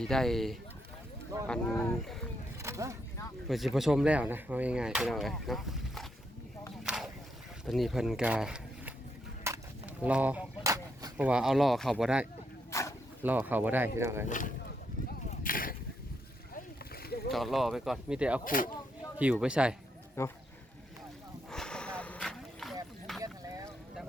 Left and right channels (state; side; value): normal; both; correlation 0.79